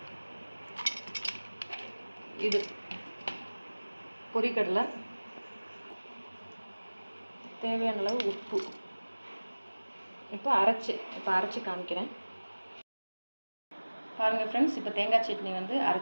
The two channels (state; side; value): inverted; both; correlation -1.00